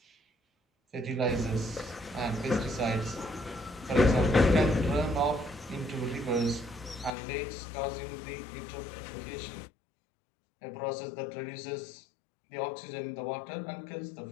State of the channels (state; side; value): drops out; right; at 7.1 s